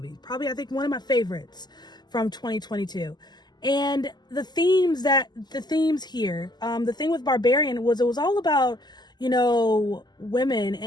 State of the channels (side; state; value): right; late; 0.21 ms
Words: Probably, I think, one of my favorites from 2022. And the themes here, the thing with Barbarian was it was all about, women